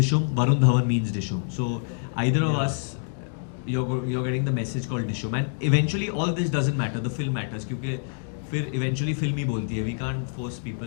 Varun Dhawan means Dishum. So either of us, you're getting the message called Dishum. And eventually all this doesn't matter, the film matters. क्योंकि फिर eventually film ही बोलती है. We can't force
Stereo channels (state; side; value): silent; right; digital silence